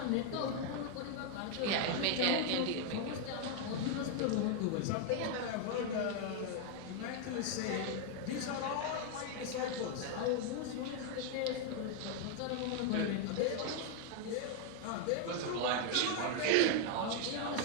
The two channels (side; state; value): both; different; correlation 0.00